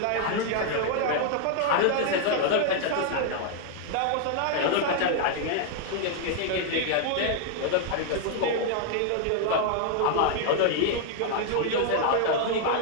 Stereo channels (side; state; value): both; different; correlation 0.00